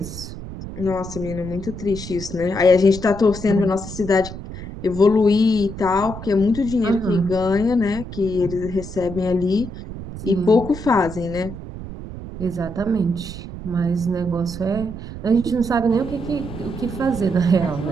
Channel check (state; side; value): noise; right; rumble, 10 dB below the sound